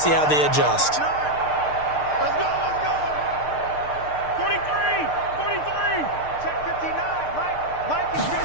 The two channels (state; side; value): late; right; 6.6 ms